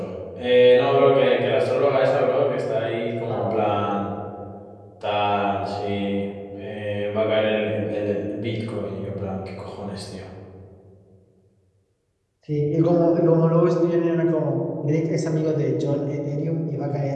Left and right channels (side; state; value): both; identical; correlation 1.00